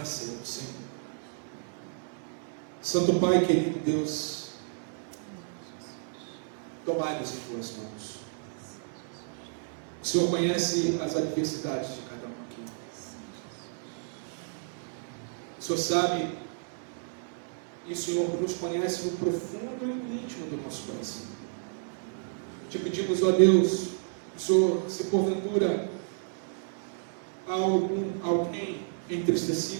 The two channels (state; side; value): silent; left; 57 dB below the other